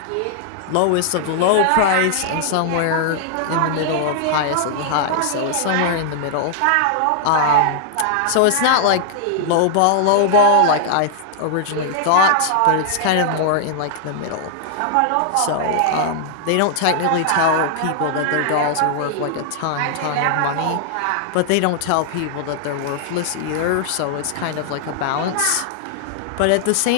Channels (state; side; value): different; both; correlation -0.01